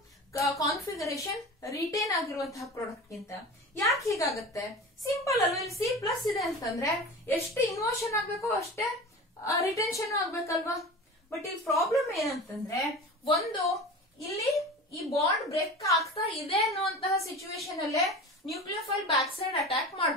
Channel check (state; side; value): normal; both; correlation 0.33